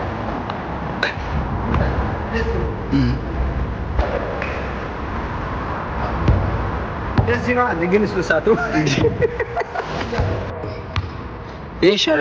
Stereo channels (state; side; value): identical; both; correlation 1.00